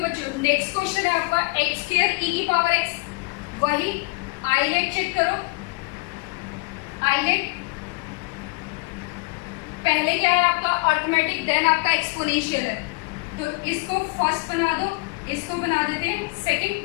बच्चों, नेक्स्ट क्वेश्चन है आपका एक्स स्क्वायर ई की पावर एक्स। वही आईलेट चेक करो, आईलेट पहले क्या है आपका अर्थमेटिक, देन आपका एक्सपोनेंशियल है, तो इसको फर्स्ट बना दो, इसको बना देते हैं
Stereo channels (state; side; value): quieter; right; 25.7 dB